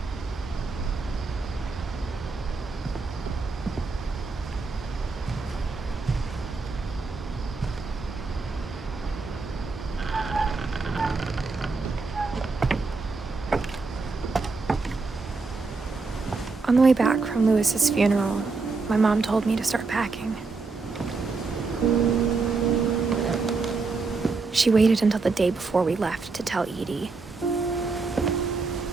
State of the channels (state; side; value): quieter; left; 4.1 dB